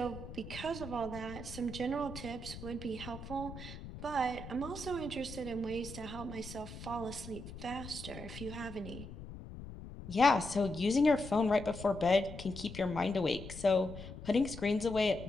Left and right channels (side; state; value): left; noise; rumble, 12 dB below the sound